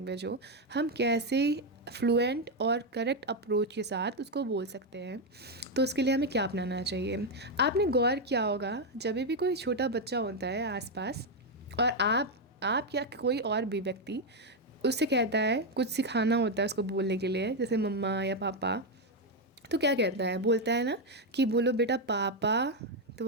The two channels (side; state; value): both; normal; correlation 0.04